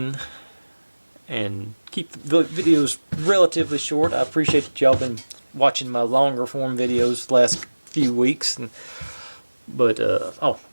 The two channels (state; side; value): inverted; both; correlation -1.00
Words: and keep the videos relatively short. I appreciate that y'all been watching my longer form videos the last few weeks, but